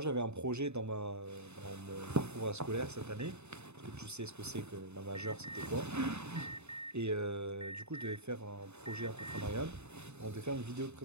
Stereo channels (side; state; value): left; late; 0.81 ms